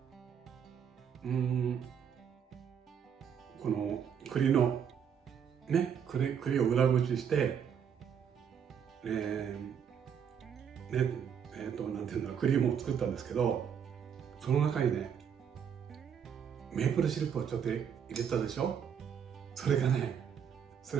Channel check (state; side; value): quieter; left; 7.8 dB